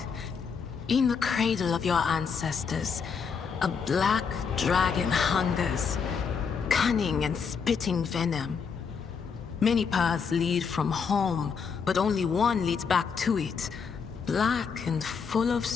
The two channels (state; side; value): quieter; right; 6.1 dB